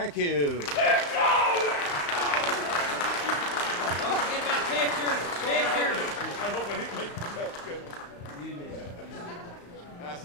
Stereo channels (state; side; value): late; right; 34 ms